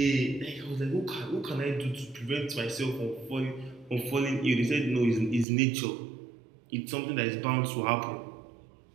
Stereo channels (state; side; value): drops out; left; at 5.5 s